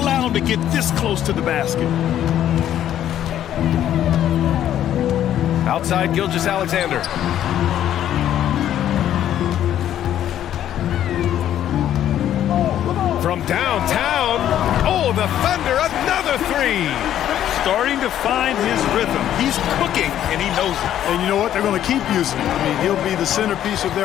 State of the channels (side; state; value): right; quieter; 11.2 dB